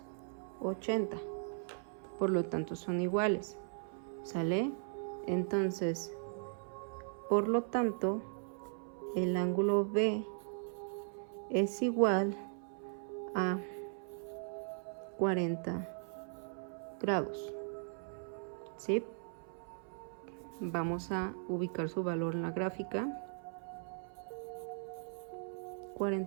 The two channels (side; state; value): left; silent; 52 dB below the other